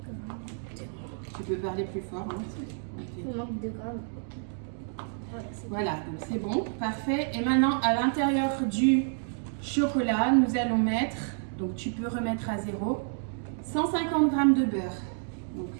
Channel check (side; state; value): left; silent; digital silence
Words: Tu peux parler plus fort. Hein? Il manque 2 grammes. Voilà, donc c'est bon, parfait. Et maintenant à l'intérieur du chocolat, nous allons mettre, donc tu peux remettre à 0, 150 g de beurre. Donc